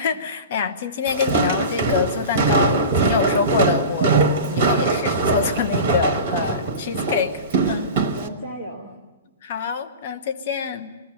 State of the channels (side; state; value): both; inverted; correlation -0.32